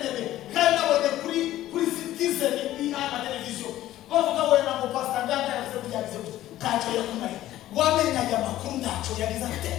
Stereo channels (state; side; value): quieter; right; 14.2 dB